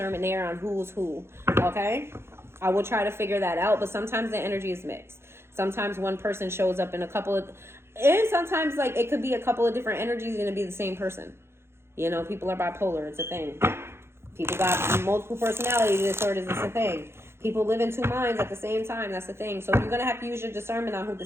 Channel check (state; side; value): late; left; 0.12 ms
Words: there on who's who. Okay? I will try to figure that out, but sometimes the energy is mixed. Sometimes one person shows up in a couple of, and sometimes like it could be a couple of different energies and it'd be the same person. You know, people are bipolar. It's a thing. People got multiple personality disorders. It's a thing. People live in two minds at the same time. That's the thing. So you're going to have to use your discernment on who